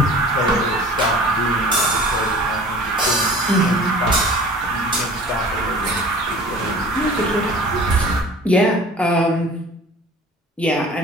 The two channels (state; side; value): normal; both; correlation 0.44